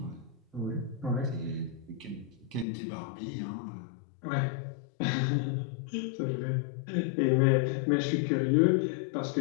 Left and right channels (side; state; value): right; drops out; at 2.7 s